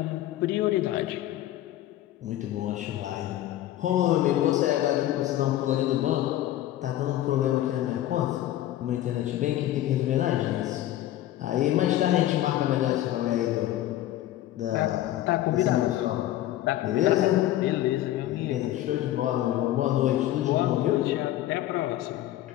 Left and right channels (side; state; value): right; quieter; 13.7 dB